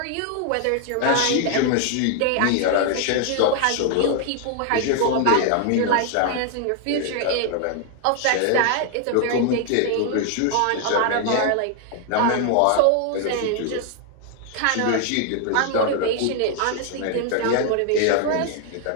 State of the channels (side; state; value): both; different; correlation 0.00